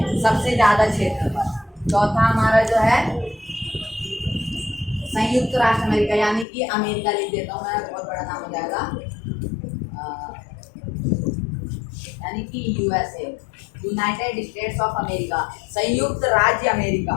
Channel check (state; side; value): drops out; right; at 6.5 s